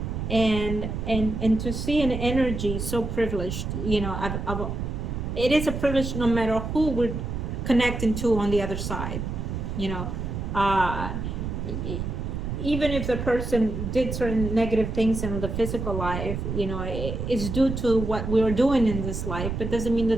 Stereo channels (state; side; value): noise; right; rumble, 4 dB below the sound